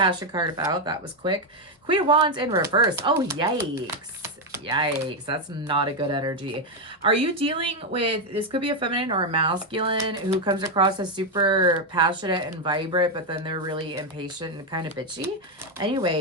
card about? That was quick. Queen of Wands in reverse. Oh, yikes. Yikes. That's not a good energy. Are you dealing with, this could be a feminine or a masculine who comes across as super passionate and vibrant, but then they're really impatient and kind of bitchy?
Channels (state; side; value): normal; both; correlation 0.04